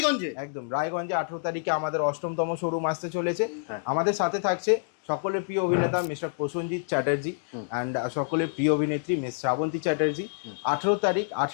একদম রায়গঞ্জে 18 তারিখে আমাদের 8তম শোরুম আসতে চলেছে। আমাদের সাথে থাকছে সকলের প্রিয় অভিনেতা মিস্টার প্রসেনজিৎ চ্যাটার্জি অ্যান্ড সকলের প্রিয় অভিনেত্রী মিস শ্রাবন্তী চ্যাটার্জি। 18 তারিখ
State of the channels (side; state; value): right; silent; digital silence